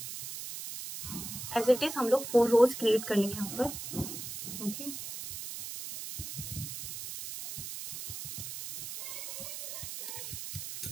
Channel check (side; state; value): right; noise; hiss, 8 dB below the sound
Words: एज इट इज हम लोग 4 रोज क्रिएट कर लेंगे यहाँ पर, ओके।